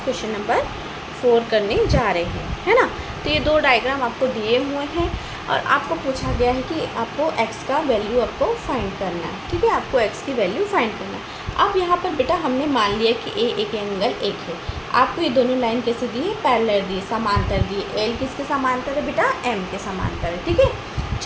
क्वेश्चन नंबर 4 करने जा रहे हैं, है ना। तो ये दो डायग्राम आपको दिए हुए हैं और आपको पूछा गया है कि आपको x का वैल्यू आपको फाइंड करना है। ठीक है, आपको x की वैल्यू फाइंड करना है। अब यहाँ पर बेटा हमने मान लिया कि a एक एंगल एक है। आपको ये दोनों लाइन कैसे दी है? पैरेलल दी है, समांतर दी है। l किसके समांतर है बेटा? m के समांतर है। ठीक है,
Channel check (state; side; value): identical; both; correlation 1.00